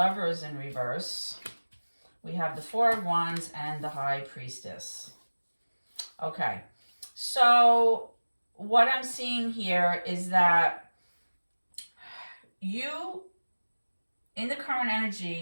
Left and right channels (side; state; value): both; inverted; correlation -1.00